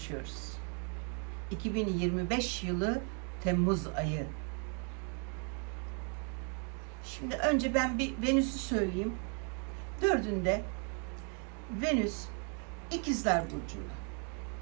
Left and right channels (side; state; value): left; quieter; 39.4 dB